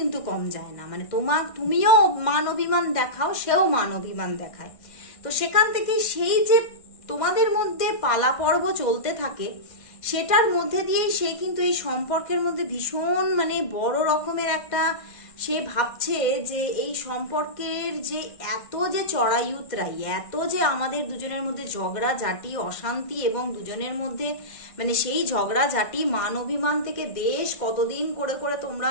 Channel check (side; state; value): right; late; 1.5 ms